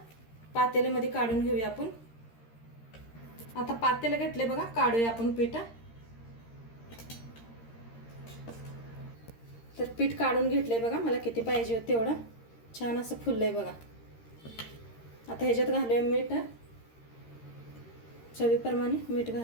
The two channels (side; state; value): right; late; 13 ms